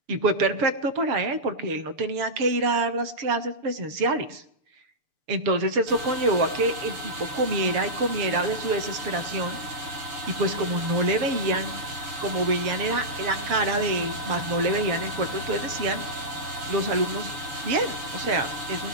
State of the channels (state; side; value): late; left; 6.9 ms